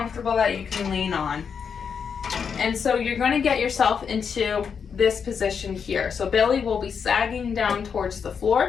that you can lean on. And so you're going to get yourself into this position here. So belly will be sagging down towards the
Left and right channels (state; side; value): quieter; right; 6.6 dB